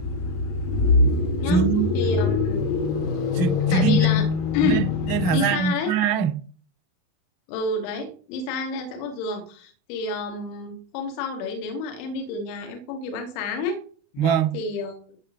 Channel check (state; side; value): late; right; 29 ms